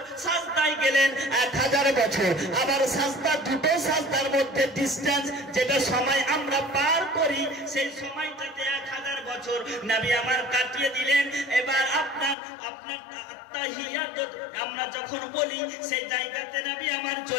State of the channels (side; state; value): right; drops out; at 12.4 s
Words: সাজদায় গেলেন 1000 বছর। আবার সাজদা, দুটো সাজদার মধ্যে ডিসটেন্স, যেটা সময় আমরা পার করি, সেই সময়টাতে 1000 বছর নবী আমার কাটিয়ে দিলেন। এবার আপনার আত্তাহিয়াত আমরা যখন বলি, সেই জায়গাতে নবী আমার